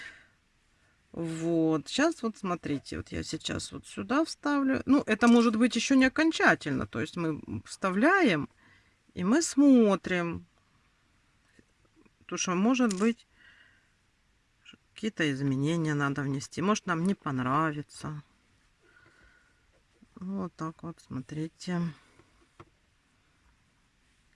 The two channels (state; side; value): identical; both; correlation 1.00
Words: Вот, сейчас вот смотрите, вот я сейчас вот сюда вставлю. Ну, это может быть еще не окончательно, то есть мы вставляем и мы смотрим, потому что может быть какие-то изменения надо внести, может нам не понравится. Вот так вот, смотрите.